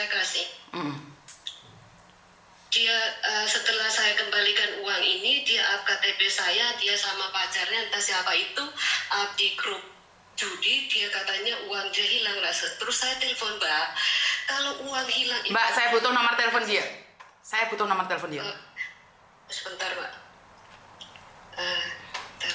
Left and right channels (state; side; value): identical; both; correlation 1.00